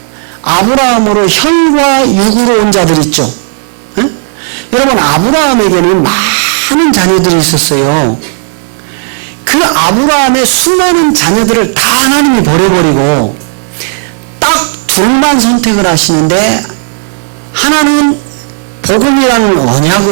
아브라함으로 혈과 육으로 온 자들 있죠. 에? 여러분 아브라함에게는 많은 자녀들이 있었어요. 그 아브라함의 수많은 자녀들을 다 하나님이 버려버리고 딱 둘만 선택을 하시는데 하나는 복음이라는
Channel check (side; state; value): left; silent; 59 dB below the other